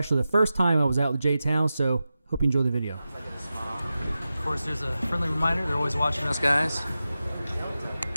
the first time I was out with J-Town, so hope you enjoy the video. Of course, there's a friendly reminder. They're always watching us, guys.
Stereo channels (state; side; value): inverted; both; correlation -0.93